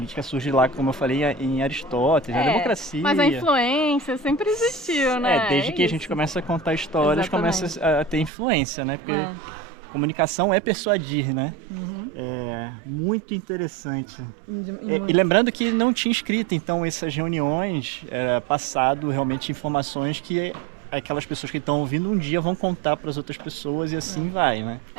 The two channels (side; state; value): left; drops out; at 8.3 s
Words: surge lá, como eu falei, em Aristóteles, a democracia. Mas a influência sempre existiu, né? Desde que a gente começa a contar histórias, começa a ter influência, né? Porque comunicação é persuadir, né? É muito interessante. E lembrando que não tinha escrita, então essas reuniões era passado realmente informações que aquelas pessoas que estão ouvindo um dia vão contar para as outras pessoas e assim vai, né?